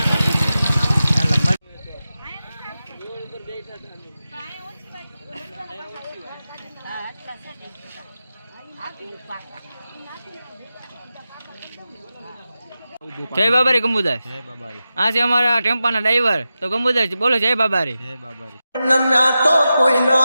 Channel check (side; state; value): both; inverted; correlation -0.92